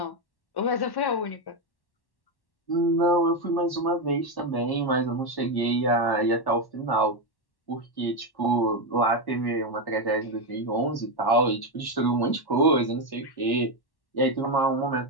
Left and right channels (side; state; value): right; late; 1.1 ms